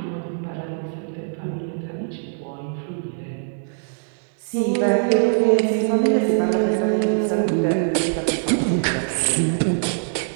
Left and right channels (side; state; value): left; silent; digital silence